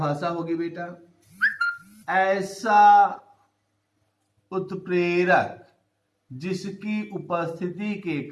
होगी बेटा? ऐसा उत्प्रेरक जिसकी उपस्थिति के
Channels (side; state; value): both; identical; correlation 1.00